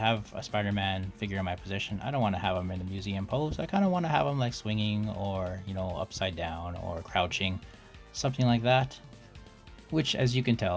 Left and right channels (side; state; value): both; identical; correlation 1.00